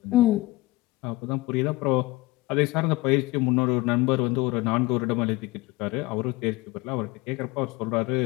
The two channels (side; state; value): right; quieter; 20.5 dB